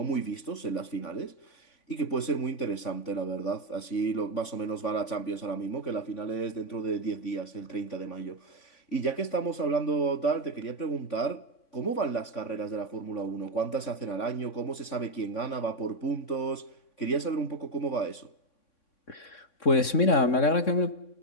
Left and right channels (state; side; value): late; right; 3.6 ms